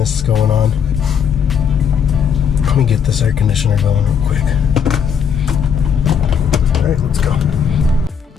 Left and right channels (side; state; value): right; quieter; 7.4 dB